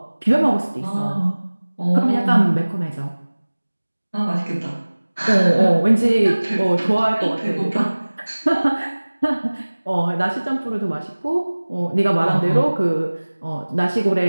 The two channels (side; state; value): both; inverted; correlation -1.00